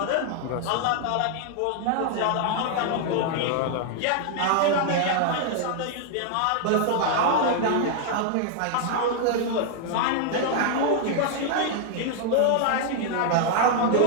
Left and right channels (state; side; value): different; both; correlation 0.00